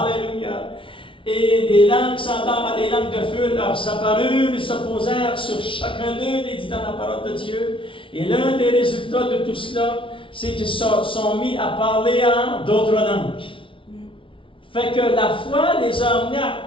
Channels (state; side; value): late; right; 0.25 ms